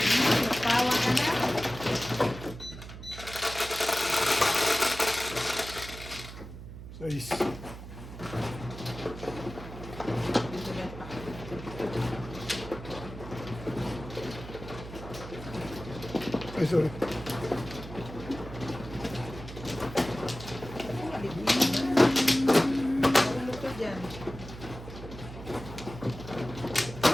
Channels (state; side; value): noise; right; hum, 12 dB below the sound